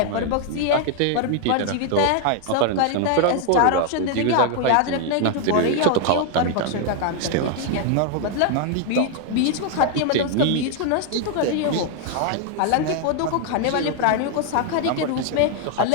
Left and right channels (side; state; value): both; different; correlation 0.00